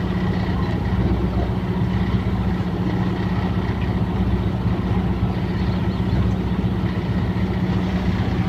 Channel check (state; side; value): identical; both; correlation 1.00